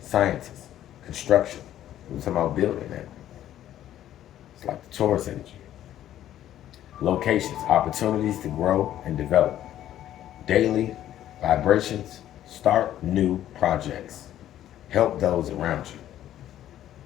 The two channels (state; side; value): quieter; right; 12.1 dB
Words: scientists, construction. We're talking about building that. It's like the Taurus energy. Locations, opportunities to grow and develop. Daily vibrations, start new projects. Help those around you.